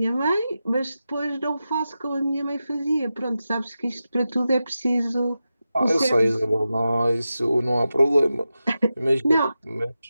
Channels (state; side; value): inverted; both; correlation -0.92